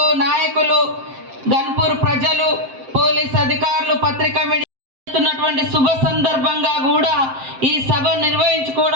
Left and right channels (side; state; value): left; late; 7.6 ms